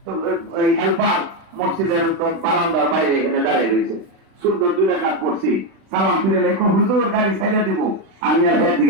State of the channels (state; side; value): late; left; 36 ms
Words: তো এই হেল্পার মসজিদের বারান্দার বাইরে এখানে দাঁড়িয়ে রয়েছে, সুন্দর 2 রাকাত পড়ছি, সালাম ফিরে লেখো হুজুর গাড়ি ছেড়ে দিব, আমি আর এর